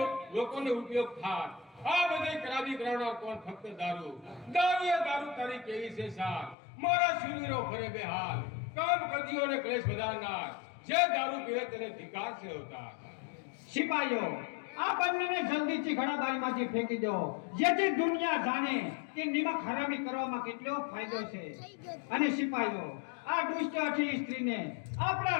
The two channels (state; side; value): drops out; right; at 6.6 s